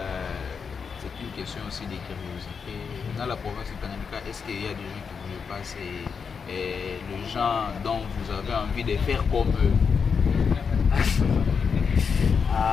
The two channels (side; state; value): right; quieter; 6.0 dB